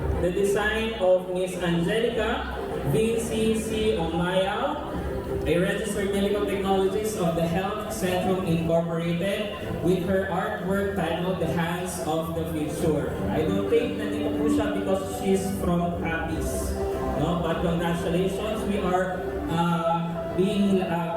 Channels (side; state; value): both; identical; correlation 1.00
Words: the design of Miss Angelica VCC Omaya, a registered medical technologist of the Health Centrum Incorporated, with her artwork titled The Hands of the Future. I don't think nandito po siya because she's from Capiz. No? But congratulations, we are